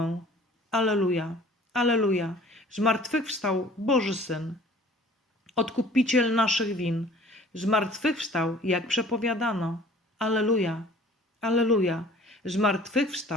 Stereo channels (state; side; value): normal; both; correlation 0.50